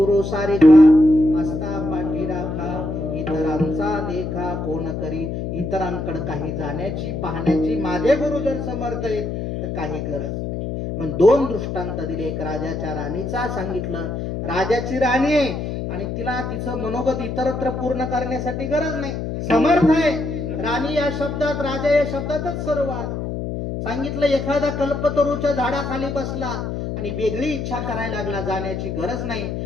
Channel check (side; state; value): left; noise; hum, 4 dB below the sound